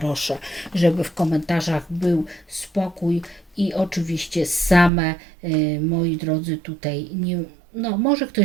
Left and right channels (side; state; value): left; drops out; at 4.9 s